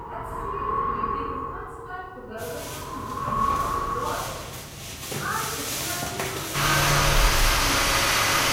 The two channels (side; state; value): both; identical; correlation 1.00